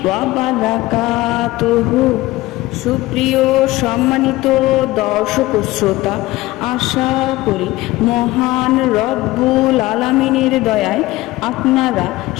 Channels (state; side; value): quieter; right; 18.5 dB